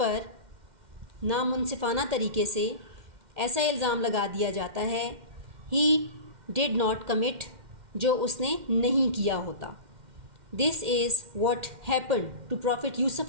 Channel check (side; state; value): left; late; 2.1 ms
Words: नामुनसिफ़ाना तरीके से ऐसा इल्ज़ाम लगा दिया जाता है he did not commit, जो उसने नहीं किया होता. This is what happened to Prophet Yusuf